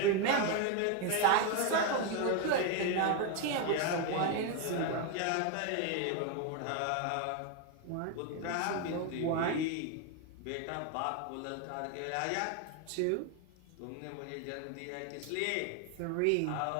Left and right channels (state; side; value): different; both; correlation 0.01